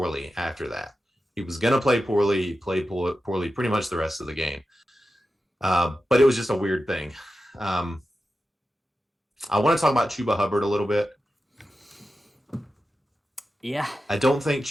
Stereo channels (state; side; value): normal; both; correlation 0.92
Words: after that. He was going to play poorly. He played poorly pretty much the rest of the game. But it was just a weird thing. I want to talk about Chuba Hubbard a little bit. Yeah. I don't think